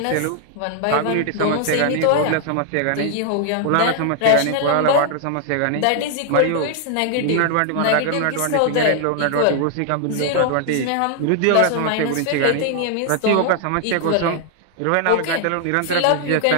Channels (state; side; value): different; both; correlation 0.00